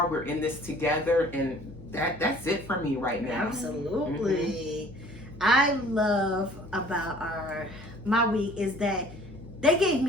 We're in this together, and that's it for me right now. Absolutely. I love about my week is that they gave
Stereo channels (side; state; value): left; noise; hum, 18 dB below the sound